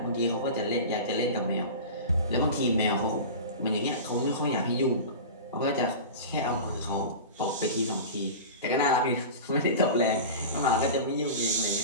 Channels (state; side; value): inverted; both; correlation -0.31